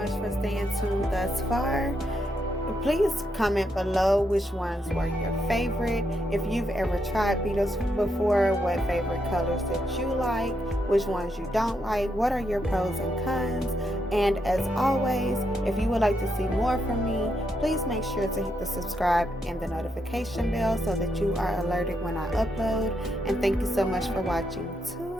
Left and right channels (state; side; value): normal; both; correlation 0.80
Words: much for staying tuned thus far. Please comment below which ones were your favorite. If you've ever tried Beetles before, what favorite colors that you like, which ones you don't like, what are your pros and cons. And as always, if you would like to see more from me, please make sure to hit the subscribe and the notification bell so that you are alerted when I upload. And thank you so much for watching.